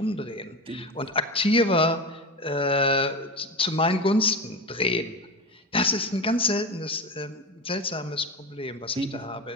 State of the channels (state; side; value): normal; both; correlation 0.23